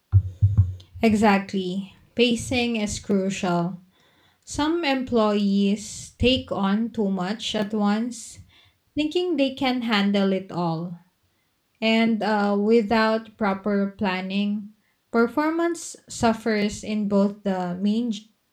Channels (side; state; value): both; identical; correlation 1.00